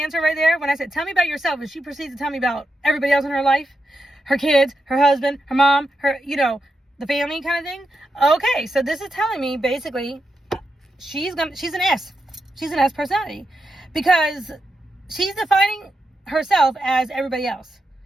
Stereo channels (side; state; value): both; normal; correlation 0.86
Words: right there, when I said, tell me about yourself, and she proceeds to tell me about everybody else in her life, her kids, her husband, her mom, her, the family kind of thing. Okay, so this is telling me basically she's an S. She's an S personality because she's defining herself as everybody else.